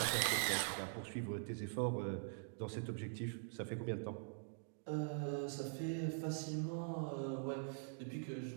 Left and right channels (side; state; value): left; silent; digital silence